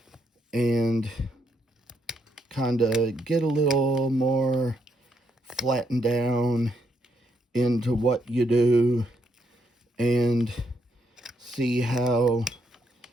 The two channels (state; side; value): normal; both; correlation 0.77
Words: and kind of get a little more flattened down into what you do, and see how